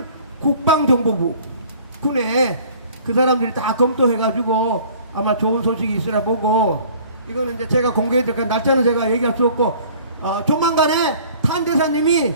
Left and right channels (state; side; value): inverted; both; correlation -0.51